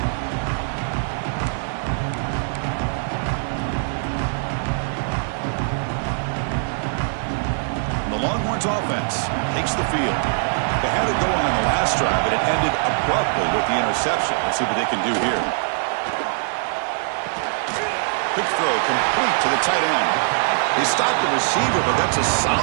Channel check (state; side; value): silent; left; digital silence